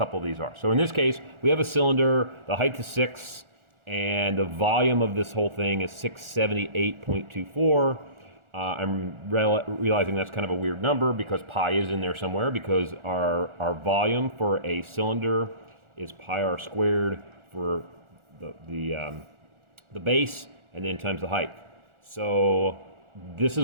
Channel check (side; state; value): left; late; 1.4 ms